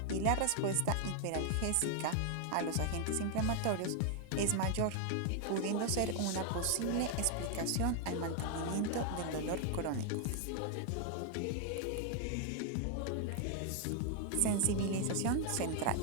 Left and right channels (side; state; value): both; different; correlation 0.00